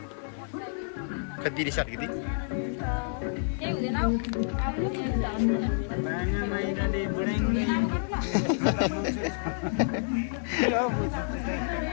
खद्दी रिसाट गिदी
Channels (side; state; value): right; silent; 59 dB below the other